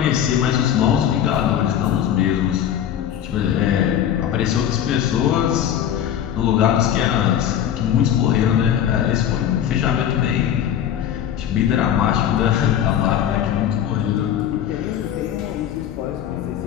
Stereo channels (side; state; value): right; quieter; 10.0 dB